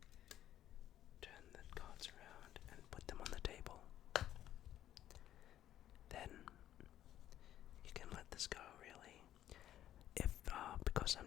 Turn the cards around and put them on the table. Then you can let this go, really. If because I'm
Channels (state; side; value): quieter; right; 12.1 dB